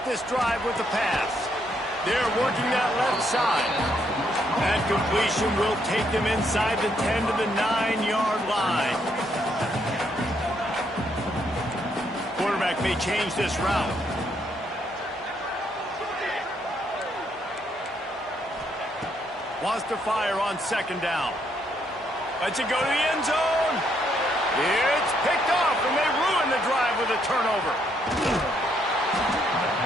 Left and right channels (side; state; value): both; normal; correlation 0.73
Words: this drive with the pass. They're working that left side. That completion will take them inside the 10 to the 9-yard line. Quarterback may change this route. Wants to fire on 2nd down. Lets it go to the end zone. It's picked off, and they ruin the drive with a turnover.